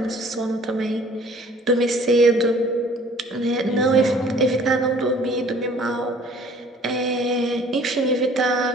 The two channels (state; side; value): normal; both; correlation 0.53